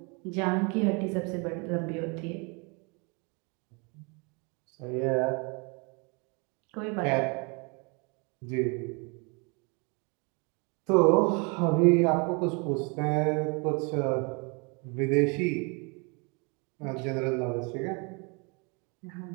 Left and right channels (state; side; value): quieter; left; 31.9 dB